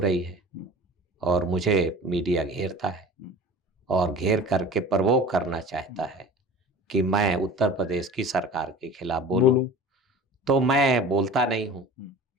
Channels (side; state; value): both; normal; correlation 0.39